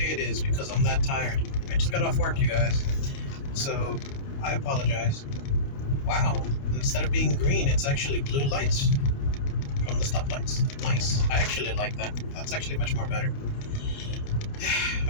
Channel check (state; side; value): late; right; 29 ms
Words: it is because I'm that tired. I just got off work, you guys. So I apologize. Wow. Instead of being green, it's actually blue lights from the stoplights. Nice. I actually like that. That's actually much more better.